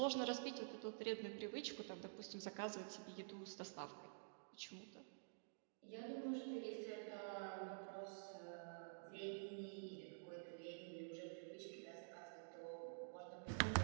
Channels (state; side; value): silent; left; digital silence